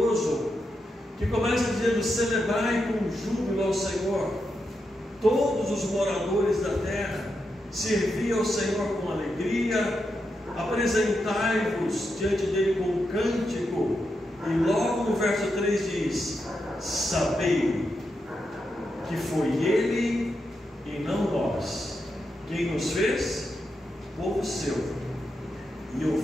que começa dizendo: celebrai com júbilo ao Senhor, todos os moradores da terra, servi ao Senhor com alegria, apresentai-vos diante dele com um cântico. E logo no verso 3 diz: sabei que foi ele e não nós quem nos fez povo seu e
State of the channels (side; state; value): both; normal; correlation 0.85